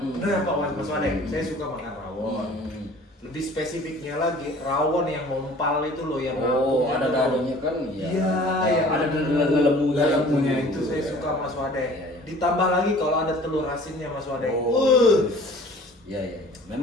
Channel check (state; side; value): normal; both; correlation 0.48